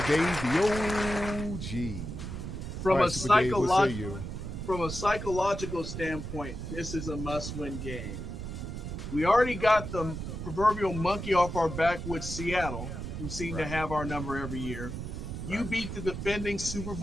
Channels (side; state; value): right; noise; rumble, 6 dB below the sound